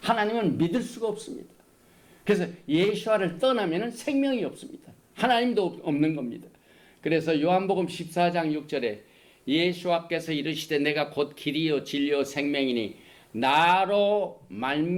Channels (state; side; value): identical; both; correlation 1.00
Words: 하나님을 믿을 수가 없습니다. 그래서 예수를 떠나면 생명이 없습니다. 하나님도 없는 겁니다. 그래서 요한복음 14장 6절에 예수께서 이르시되 내가 곧 길이요 진리요 생명이니 나로